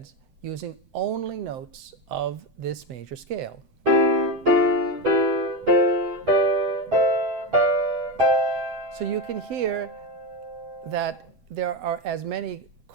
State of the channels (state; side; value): late; left; 7.8 ms